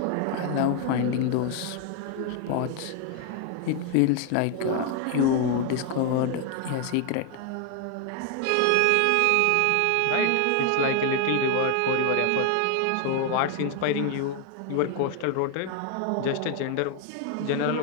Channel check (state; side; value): different; both; correlation 0.00